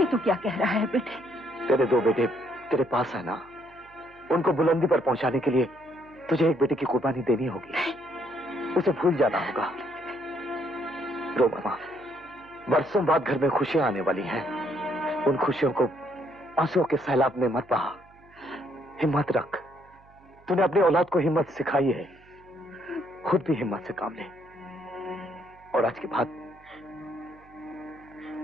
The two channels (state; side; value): noise; right; hum, 28 dB below the sound